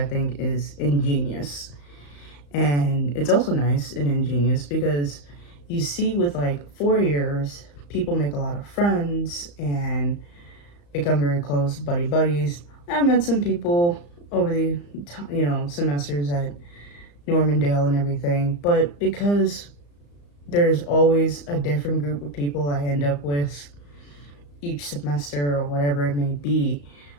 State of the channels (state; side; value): late; right; 35 ms